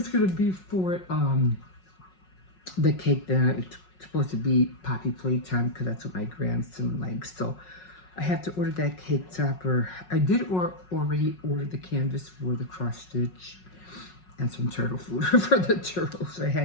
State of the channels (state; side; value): late; right; 5.4 ms